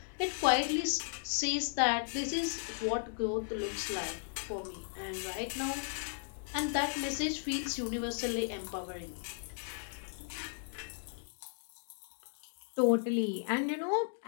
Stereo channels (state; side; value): silent; right; digital silence